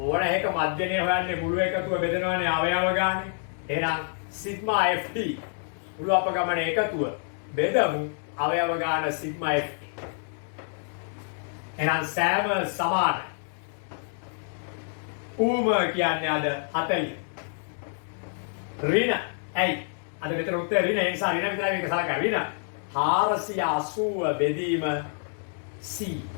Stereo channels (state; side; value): silent; right; 60 dB below the other